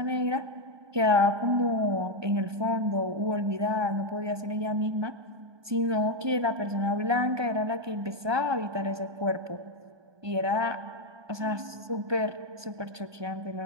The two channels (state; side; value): late; left; 1.2 ms